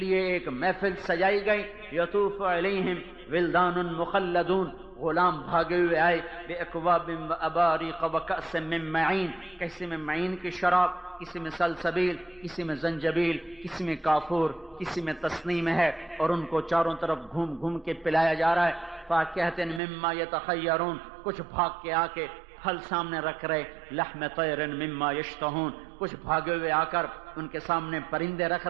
ایک محفل سجائی گئی۔ یطوف علیہم ولدان مخلدون، غلام بھاگے ہوئے آئے، باکواب واباریق وکأس من معین، کسی میں معین کی شراب، کسی میں سلسبیل، کسی میں زنجبیل، کسی میں کافور، کسی میں تسنیم ہے، اور ان کو چاروں طرف گھوم گھوم کے پلایا جا رہا ہے۔ فاکہۃ مما یتخیرون، کچھ بھاگ کے آ کے پھل سامنے رکھ رہے، لحم طیر مما یشتہون، کچھ بھاگے ہوئے آ کر ان کے سامنے پرندے رکھ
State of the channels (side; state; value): left; drops out; at 19.8 s